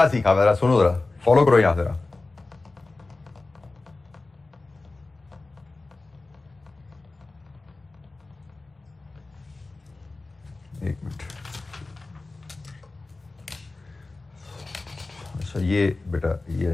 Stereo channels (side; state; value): right; quieter; 3.3 dB